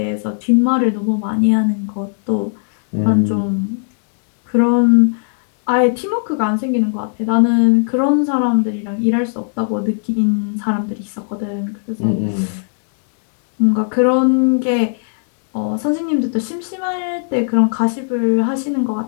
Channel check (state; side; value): silent; right; digital silence